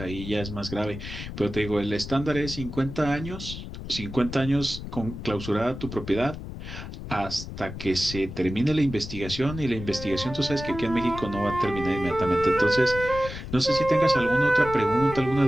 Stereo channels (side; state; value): left; noise; rumble, 10 dB below the sound